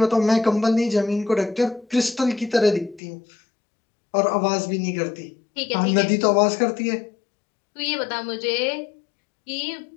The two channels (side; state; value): right; drops out; at 3.0 s